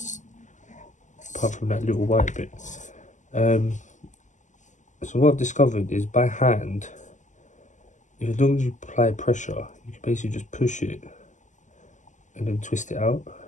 apart from that little white bit. So what I've discovered is by hand, as long as you apply pressure, you can basically just push it and then twist it out.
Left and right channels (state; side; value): late; right; 0.36 ms